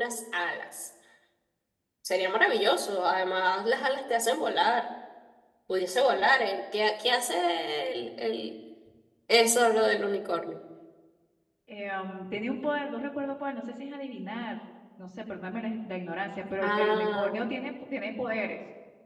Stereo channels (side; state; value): both; identical; correlation 1.00